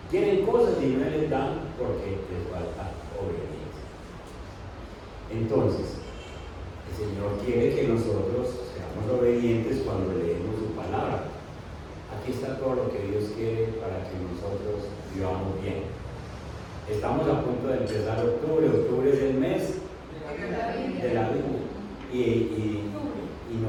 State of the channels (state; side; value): identical; both; correlation 1.00